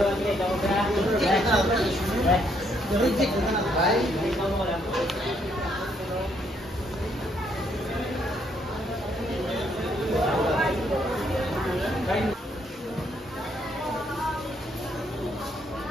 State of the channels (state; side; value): normal; both; correlation 0.71